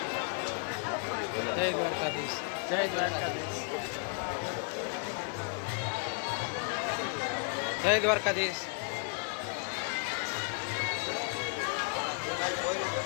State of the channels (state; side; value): quieter; right; 39.5 dB